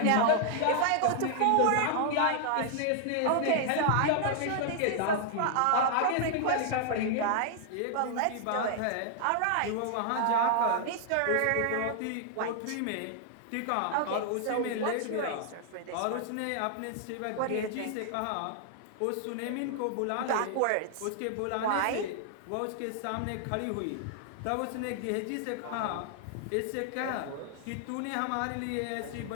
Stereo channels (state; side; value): different; both; correlation -0.01